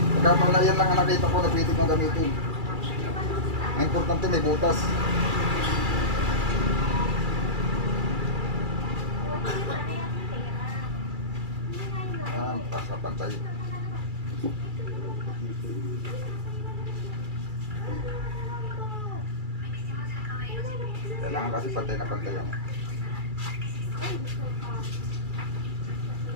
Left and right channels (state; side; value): late; left; 2.3 ms